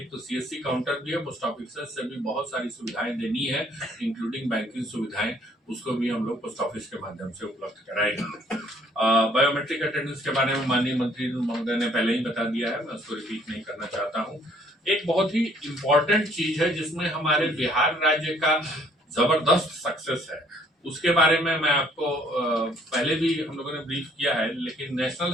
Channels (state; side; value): normal; both; correlation 0.62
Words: तो सीएससी काउंटर भी है, पोस्ट ऑफिसर्स से भी बहुत सारी सुविधाएं देनी है, इंक्लूडिंग बैंकिंग सुविधाएं, उसको भी हम लोग पोस्ट ऑफिस के माध्यम से उपलब्ध कराएंगे। बायोमेट्रिक अटेंडेंस के बारे में माननीय मंत्री महोदय ने पहले ही बता दिया है, मैं उसको रिपीट नहीं करना चाहता हूँ। एक बहुत ही इम्पोर्टेंट चीज है जिसमें हमारे बिहार राज्य का जबरदस्त सक्सेस है, उसके बारे में मैं आपको पहले भी हम लोगों ने ब्रीफ किया है, लेकिन नेशनल